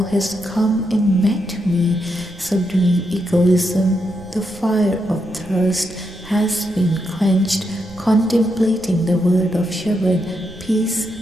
has come and met me. Subduing egoism, the fire of thirst has been quenched. Contemplating the word of Shabad, peace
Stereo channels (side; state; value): right; noise; rumble, 22 dB below the sound